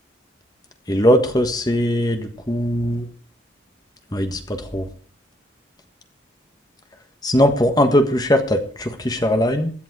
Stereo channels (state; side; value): normal; both; correlation 0.70